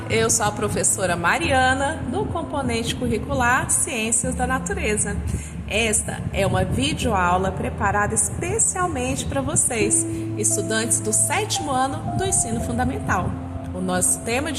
eu sou a professora Mariana, do componente curricular Ciências da Natureza. Esta é uma videoaula preparada especialmente para vocês, estudantes do 7º ano do ensino fundamental. O nosso tema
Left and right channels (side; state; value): both; identical; correlation 1.00